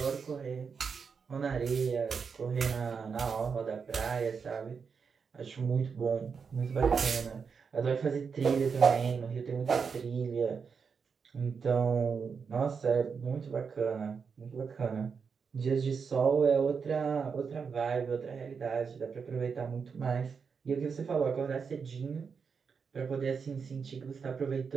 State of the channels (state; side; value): quieter; left; 5.9 dB